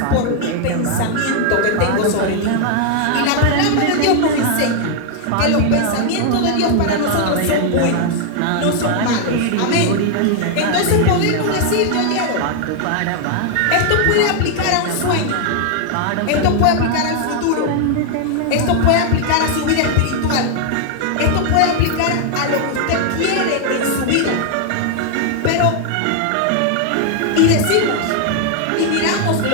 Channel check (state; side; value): different; both; correlation 0.00